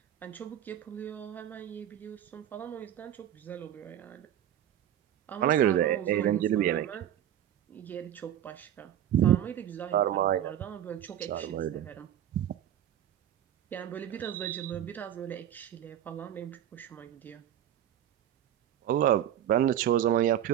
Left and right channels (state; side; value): quieter; left; 11.0 dB